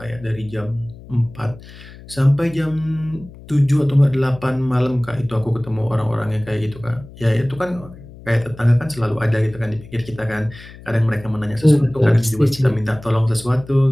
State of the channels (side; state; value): left; noise; hum, 18 dB below the sound